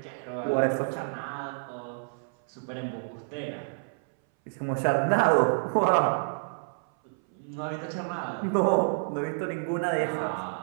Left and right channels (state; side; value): silent; left; 59 dB below the other